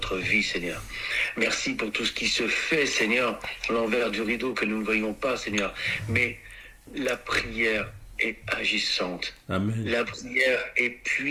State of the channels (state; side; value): identical; both; correlation 1.00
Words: vie, Seigneur. Merci pour tout ce qui se fait, Seigneur, à l'envers du rideau que nous ne voyons pas, Seigneur. Mais la prière est agissante. Amen. La prière est